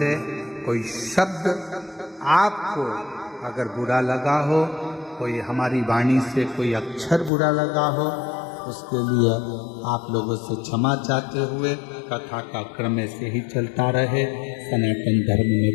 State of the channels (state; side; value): drops out; right; at 7.3 s